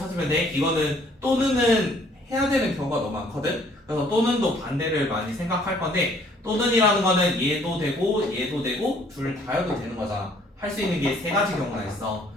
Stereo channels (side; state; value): both; normal; correlation 0.61